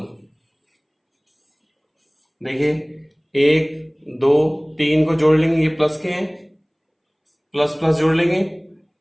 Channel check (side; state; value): both; identical; correlation 1.00